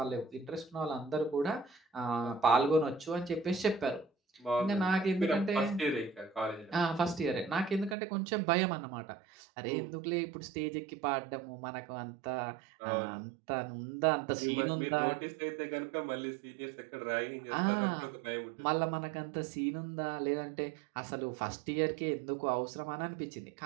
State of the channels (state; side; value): drops out; left; at 8.0 s